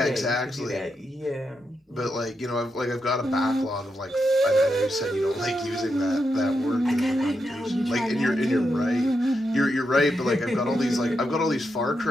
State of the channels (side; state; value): both; normal; correlation 0.84